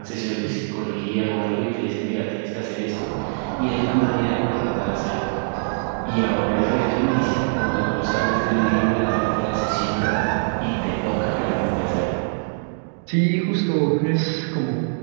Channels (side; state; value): left; silent; digital silence